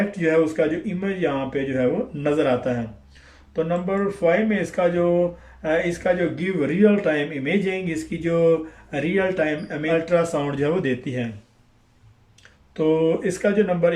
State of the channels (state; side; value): identical; both; correlation 1.00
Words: जो है उसका जो इमेज यहाँ पे जो है वो नज़र आता है। तो नंबर 5 में इसका जो गिव रियल टाइम इमेजिंग, इसकी जो रियल टाइम अल्ट्रासाउंड जो है वो देती है। तो इसका जो नंबर